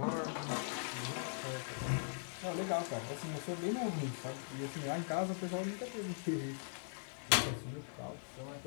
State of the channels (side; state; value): right; silent; 51 dB below the other